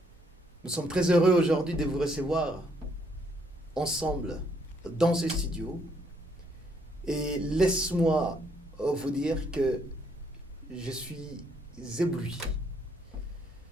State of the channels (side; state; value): both; normal; correlation 0.70